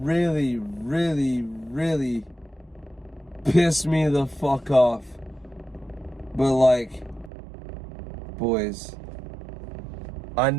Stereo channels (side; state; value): left; drops out; at 7.3 s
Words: really pissed me the fuck off. But like, boys, I